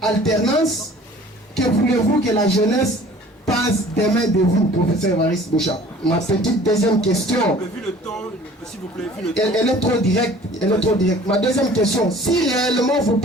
Que voulez-vous que la jeunesse passe demain de vous, professeur Évariste Bouchard? Ma petite deuxième question. Vu le temps, s'il vous plaît, vu le temps. Elle est trop directe. Elle est trop directe. Ma deuxième question. Si réellement vous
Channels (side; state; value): both; normal; correlation 0.49